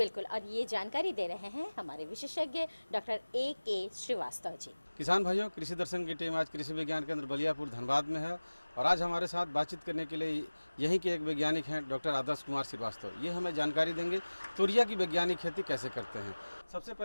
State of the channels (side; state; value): both; inverted; correlation -1.00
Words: और ये जानकारी दे रहे हैं हमारे विशेषज्ञ डॉक्टर A.K. श्रीवास्तव जी। किसान भाइयों, कृषि दर्शन की टीम आज कृषि विज्ञान केंद्र बलियापुर धनबाद में है और आज हमारे साथ बातचीत करने के लिए यहीं के एक वैज्ञानिक हैं डॉक्टर आदर्श कुमार श्रीवास्तव। ये हमें जानकारी देंगे तोरिया की वैज्ञानिक खेती कैसे करते हैं। सबसे